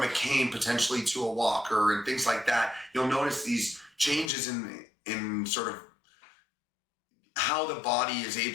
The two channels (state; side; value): drops out; right; at 4.3 s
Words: a cane potentially to a walker and things like that. You'll notice these changes in sort of how the body is